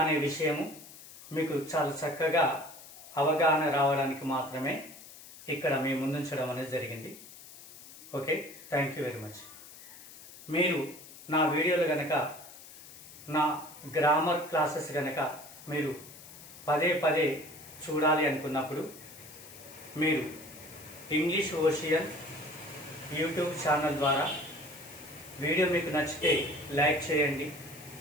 విషయము మీకు చాలా చక్కగా అవగాహన రావడానికి మాత్రమే ఇక్కడ మీ ముందుంచడం అనేది జరిగింది. Okay, thank you very much. మీరు నా వీడియోలు కనుక, నా గ్రామర్ క్లాసెస్ కనుక మీరు పదే పదే చూడాలి అనుకున్నప్పుడు మీరు ఇంగ్లీష్ ఓషియన్ యూట్యూబ్ ఛానల్ ద్వారా వీడియో మీకు నచ్చితే లైక్ చేయండి,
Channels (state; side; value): noise; left; hiss, 17 dB below the sound